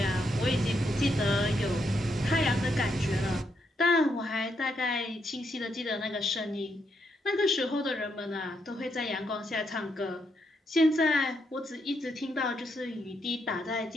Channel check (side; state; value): both; normal; correlation 0.78